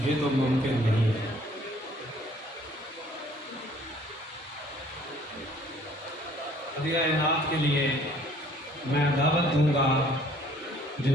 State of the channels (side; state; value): both; normal; correlation 0.57